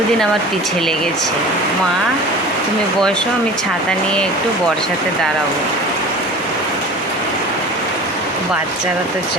আমার পিছে লেগেছে, মা তুমি বসো, আমি ছাতা নিয়ে একটু বর্ষাতে দাঁড়াবো। বাচ্চারা তো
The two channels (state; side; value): normal; both; correlation 0.38